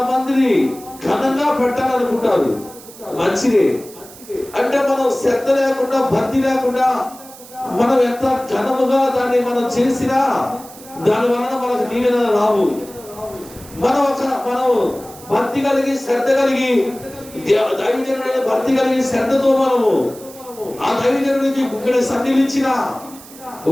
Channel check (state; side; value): noise; right; hiss, 19 dB below the sound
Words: మందిని ఘనంగా పెట్టాలనుకుంటారు, మంచిదే. అంటే మనం శ్రద్ధ లేకుండా భక్తి లేకుండా మనం ఎంత ఘనముగా దాన్ని మనం చేసినా దాని వలన మనకు దీవెన రావు. మనం భక్తి కలిగి శ్రద్ధ కలిగి దైవజనుడైన భక్తి కలిగి శ్రద్ధతో మనము ఆ దైవజనుడికి ఇక్కడ సన్నిధించిన